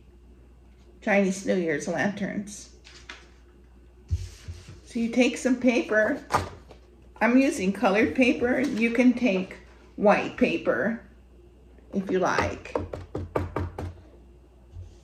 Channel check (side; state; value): both; identical; correlation 1.00